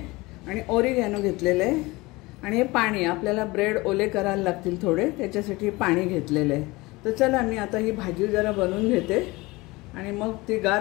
आणि ओरिगॅनो घेतलेले आहे आणि हे पाणी आपल्याला ब्रेड ओले करायला लागतील थोडे, त्याच्यासाठी पाणी घेतलेले आहे। तर चला मी आता ही भाजी जरा बनवून घेते आणि मग ती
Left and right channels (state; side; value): quieter; right; 22.3 dB